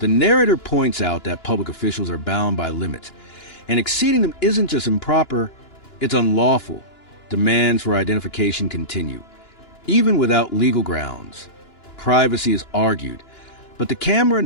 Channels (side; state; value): right; late; 2.9 ms